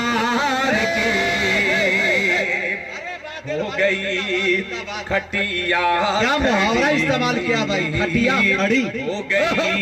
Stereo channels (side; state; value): both; identical; correlation 1.00